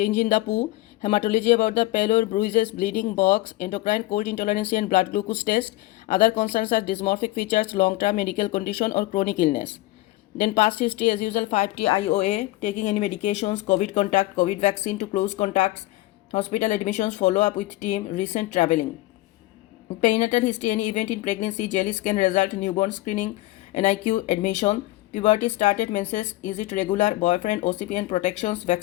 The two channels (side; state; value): right; quieter; 18.2 dB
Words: in the poo, hematology about the pallor, bruises, bleeding, box, endocrine, cold intolerance and blood glucose test. Other concerns are dysmorphic features, long-term medical condition or chronic illness. Then past history as usual, 5T IOA, taking any medications, COVID contact, COVID vaccine to close contacts, hospital admissions, follow-up with team, recent traveling. Perinatal history, any event in pregnancy, jelly scan result, newborn screening, NIQ admission. Puberty started, menses, is it regular, boyfriend, OCP and protections,